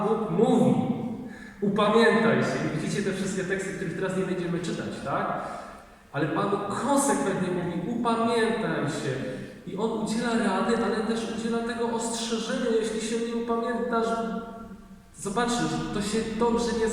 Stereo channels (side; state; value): both; identical; correlation 1.00